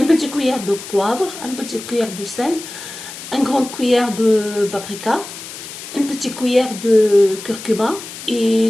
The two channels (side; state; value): left; noise; hiss, 12 dB below the sound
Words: cuillère de poivre, un petit cuillère de sel, une grande cuillère de paprika, une petite cuillère de curcuma